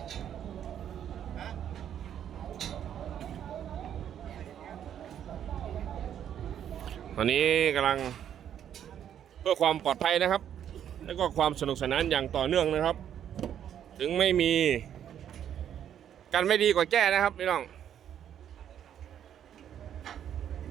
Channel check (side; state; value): left; quieter; 9.7 dB